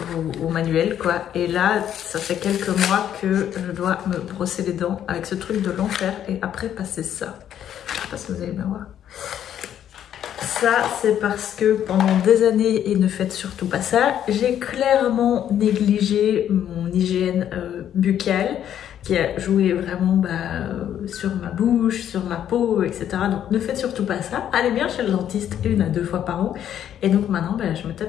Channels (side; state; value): right; quieter; 10.2 dB